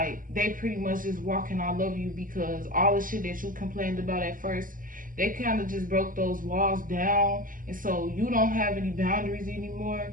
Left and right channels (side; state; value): left; late; 0.40 ms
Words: they pretty much just walking all over you, because all the shit that you complained about at first, they kind of just broke those walls down, and so you don't have any boundaries anymore,